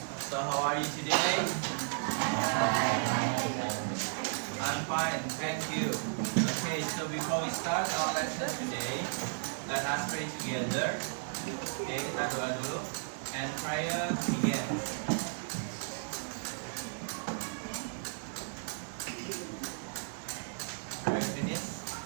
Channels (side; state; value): left; silent; digital silence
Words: So, how are you today? I'm fine, thank you. Okay, so before we start our lesson today, let us pray together. Okay, kita doa dulu. And prayer begins.